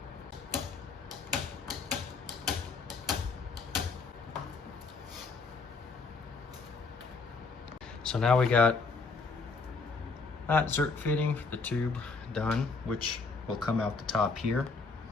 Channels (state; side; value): quieter; right; 4.3 dB